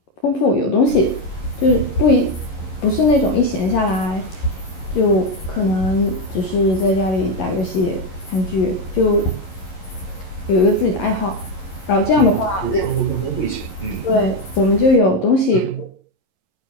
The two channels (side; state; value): right; late; 11 ms